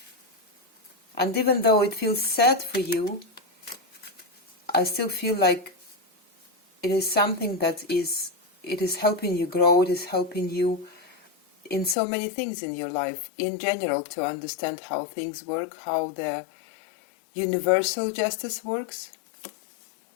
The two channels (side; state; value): right; drops out; at 12.0 s